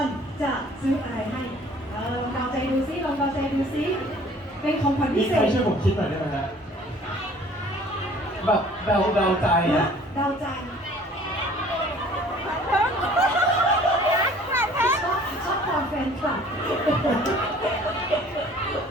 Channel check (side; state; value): both; normal; correlation 0.52